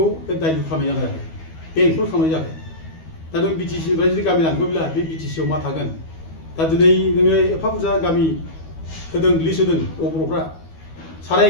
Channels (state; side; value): late; right; 12 ms